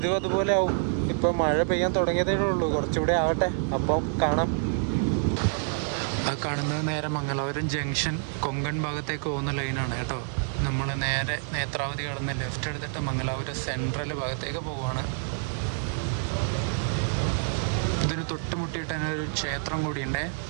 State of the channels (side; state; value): left; silent; digital silence